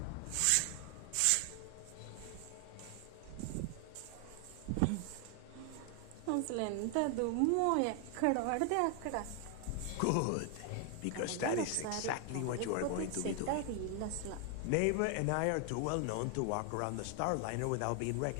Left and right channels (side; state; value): both; different; correlation 0.00